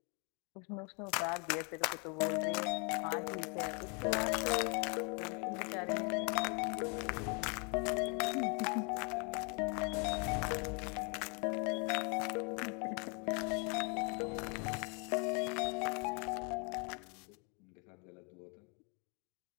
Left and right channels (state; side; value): quieter; right; 34.8 dB